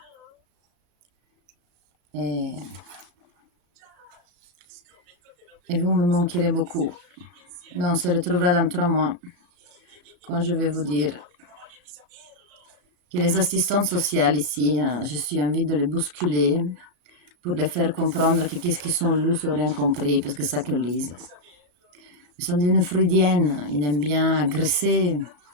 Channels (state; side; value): late; left; 33 ms